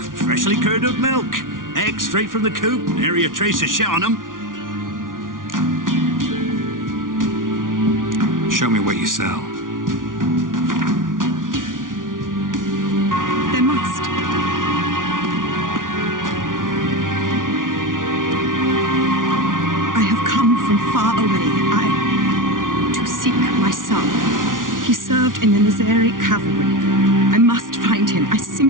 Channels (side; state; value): left; late; 0.89 ms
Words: curdled milk. Eggs straight from the coop, nary a trace of shit on them. Show me what you sell. There must. I have come from far away. To seek my son. He served in the Nazari cavalry. I must find him. I